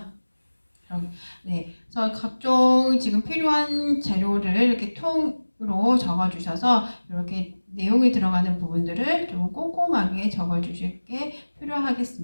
네, 그래서 각종 지금 필요한 재료를 이렇게 통으로 적어주셔서 이렇게 내용이 들어가는 부분들을 좀 꼼꼼하게 적어주실 게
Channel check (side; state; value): both; inverted; correlation -1.00